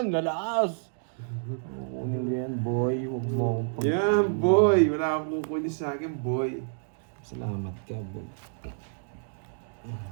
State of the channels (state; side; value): silent; left; digital silence